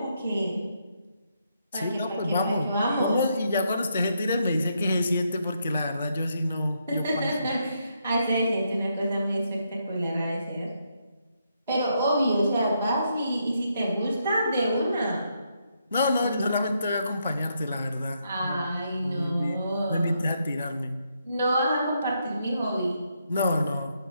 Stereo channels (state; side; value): inverted; both; correlation -0.78